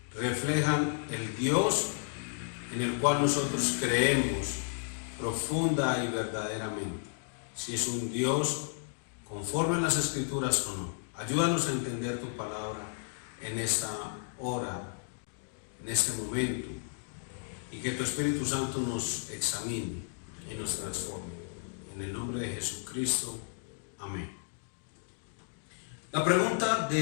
reflejan el Dios en el cual nosotros creemos profunda y verdaderamente. Si es un Dios conforme a las Escrituras o no. Ayúdanos a entender tu palabra en esta hora, en este momento, y que tu Espíritu Santo nos examine y nos transforme. En el nombre de Jesucristo. Amén. La pregunta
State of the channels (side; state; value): right; silent; digital silence